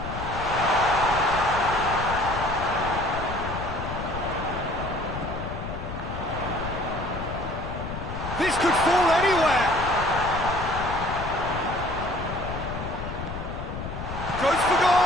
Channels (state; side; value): noise; left; rumble, 7 dB below the sound